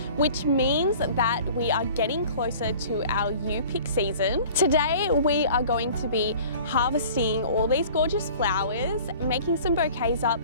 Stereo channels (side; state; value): both; inverted; correlation -0.46